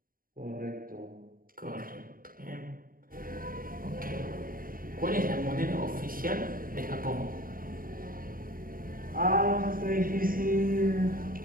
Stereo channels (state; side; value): late; left; 0.41 ms